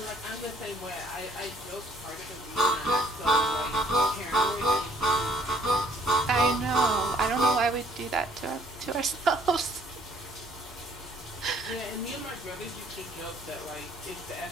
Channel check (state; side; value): normal; both; correlation 0.62